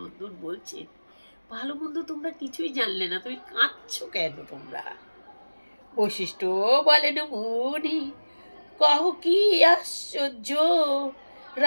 বলছে, ভালো মন্দ তোমরা কিছুই জানলে না, তুমি কাঁদছো কেন তোমরা? বৈশিষ্ট্য বলেন মুনি, কহ কি আশ্চর্য,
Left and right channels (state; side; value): inverted; both; correlation -1.00